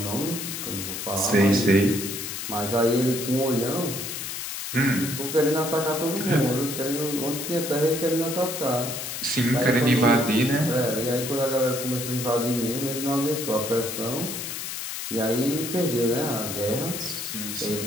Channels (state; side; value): noise; left; hiss, 6 dB below the sound